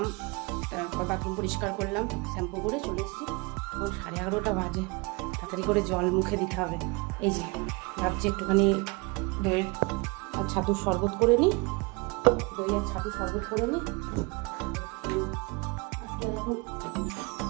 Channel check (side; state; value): left; quieter; 26.9 dB